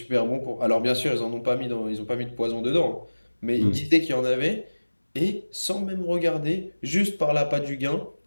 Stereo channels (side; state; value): both; inverted; correlation -1.00